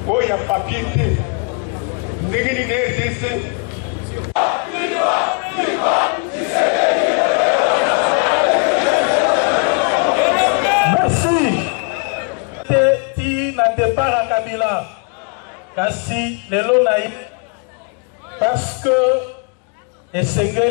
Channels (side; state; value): right; quieter; 34.9 dB